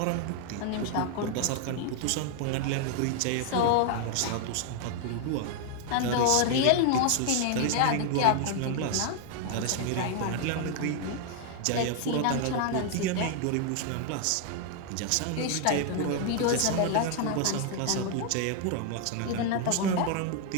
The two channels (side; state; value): both; different; correlation 0.00